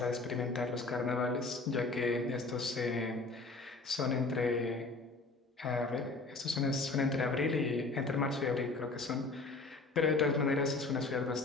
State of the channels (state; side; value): quieter; right; 3.6 dB